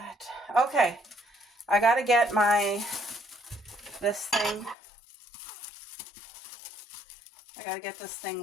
Okay, I got to get this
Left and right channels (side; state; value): right; drops out; at 4.8 s